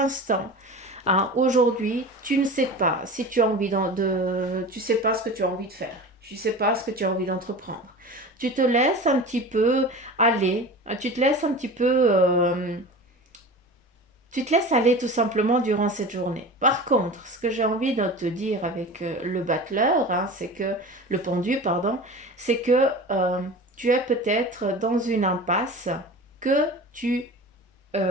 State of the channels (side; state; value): both; normal; correlation 0.34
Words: hein, aujourd'hui, tu ne sais pas si tu as envie tu sais pas ce que tu as envie de faire. Tu sais pas ce que tu as envie d'entreprendre. Tu te laisses un petit peu aller. Tu te laisses un petit peu tu te laisses aller tout simplement durant cette journée. Par contre, ce que j'ai envie de te dire avec le battleur, hein, c'est que le pendu, pardon, c'est que tu es peut-être dans une impasse que tu